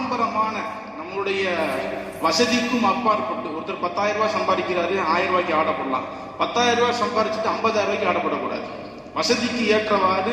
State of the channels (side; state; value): both; identical; correlation 1.00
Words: நம்மளுடைய வசதிக்கும் அப்பாற்பட்டு ஒருத்தர் 10,000 ரூபாய் சம்பாதிக்கிறாரு, 1000 ரூபாய்க்கு ஆடப்படலாம். 10,000 ரூபாய் சம்பாதிச்சுட்டு 50,000 ரூபாய்க்கு ஆடப்படக்கூடாது. வசதிக்கு ஏற்றவாறு